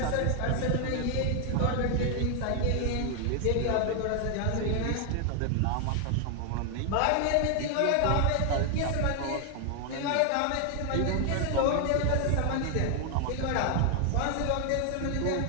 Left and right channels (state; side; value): different; both; correlation 0.00